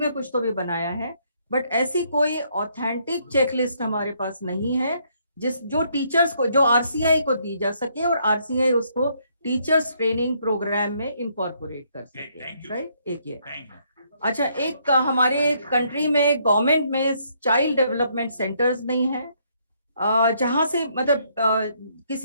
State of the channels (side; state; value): both; inverted; correlation -0.70